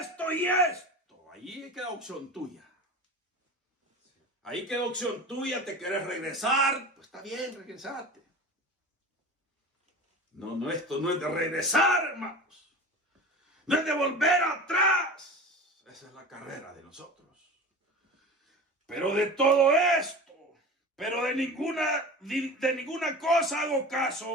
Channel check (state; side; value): normal; both; correlation 0.33